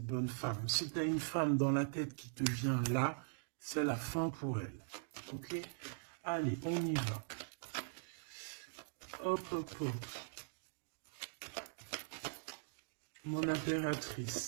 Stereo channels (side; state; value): left; silent; digital silence